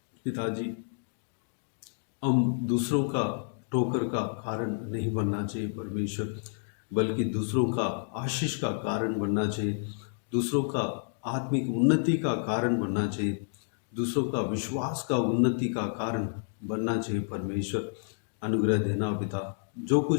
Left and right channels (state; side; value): silent; right; digital silence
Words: पिताजी, हम दूसरों का ठोकर का कारण नहीं बनना चाहिए परमेश्वर, बल्कि दूसरों का आशीष का कारण बनना चाहिए, दूसरों का आत्मिक उन्नति का कारण बनना चाहिए, दूसरों का विश्वास का उन्नति का कारण बनना चाहिए परमेश्वर। अनुग्रह देना पिता, जो